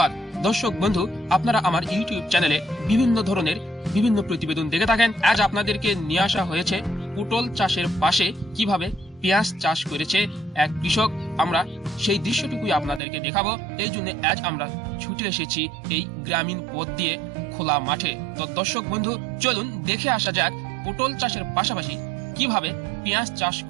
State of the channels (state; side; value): drops out; left; at 13.0 s